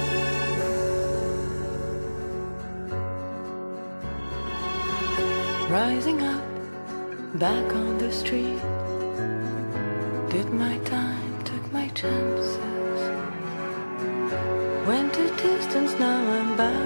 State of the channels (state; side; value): inverted; both; correlation -1.00